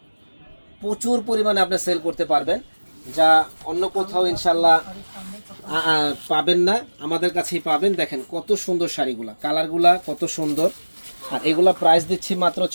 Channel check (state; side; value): inverted; both; correlation -1.00